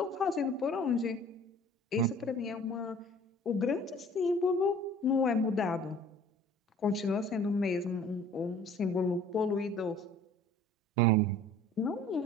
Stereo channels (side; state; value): both; normal; correlation 0.50